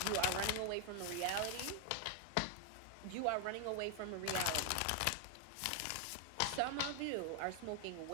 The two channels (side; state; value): both; different; correlation 0.00